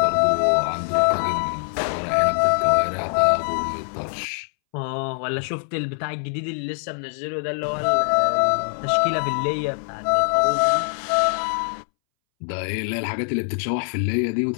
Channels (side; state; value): right; silent; 63 dB below the other